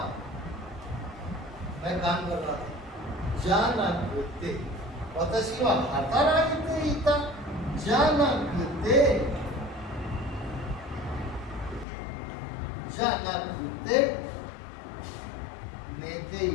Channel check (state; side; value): drops out; right; at 11.9 s